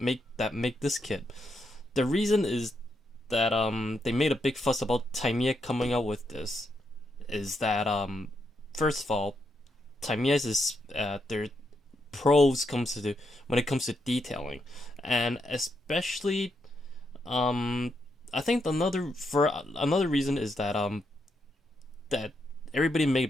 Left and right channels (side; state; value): both; normal; correlation 0.81